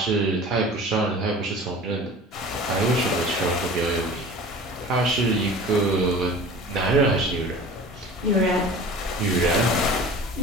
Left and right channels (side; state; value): both; normal; correlation 0.39